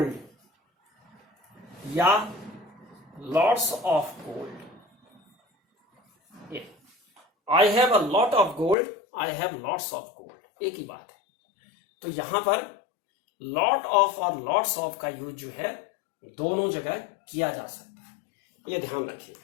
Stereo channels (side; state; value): right; drops out; at 8.8 s